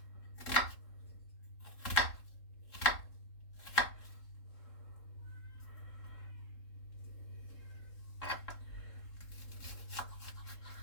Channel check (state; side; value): late; right; 3.7 ms